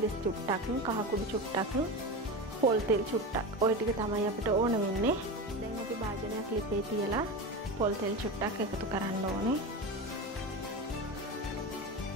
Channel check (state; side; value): normal; both; correlation 0.23